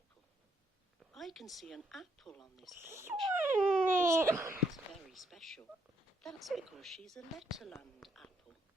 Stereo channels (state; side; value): normal; both; correlation 0.74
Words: I can see an apple on this page. This apple is very special. That's because she's a Letterland apple.